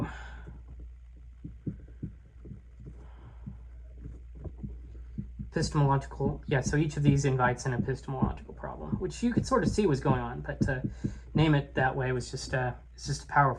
Epistemological, yeah, so each of these invites an epistemological problem, which you could sort of see was going on, but to name it that way was just it's just a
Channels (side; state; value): both; identical; correlation 1.00